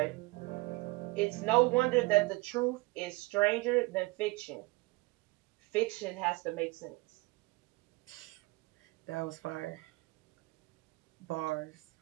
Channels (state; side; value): quieter; left; 23.5 dB